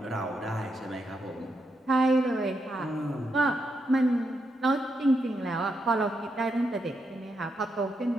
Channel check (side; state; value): both; normal; correlation 0.82